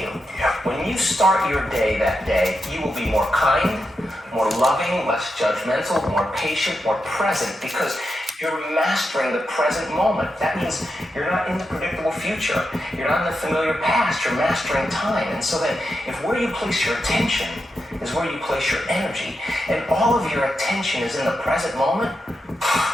you, when you start your day that day, you will be more kind, more loving, less judgmental, more patient, more present, because you're mastering the present moment. That means you're not in the predictable future. You're not in the familiar past. You're mastering time. And so then, if where you place your attention is where you place your energy, and all of your attention is in the present moment,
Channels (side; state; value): both; normal; correlation 0.87